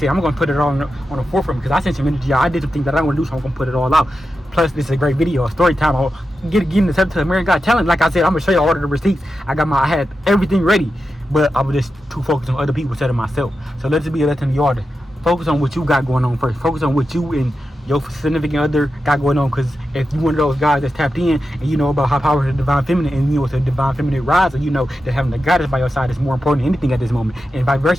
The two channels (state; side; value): normal; both; correlation 0.90